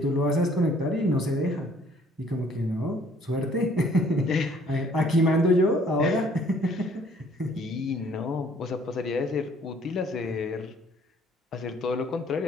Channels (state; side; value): normal; both; correlation 0.59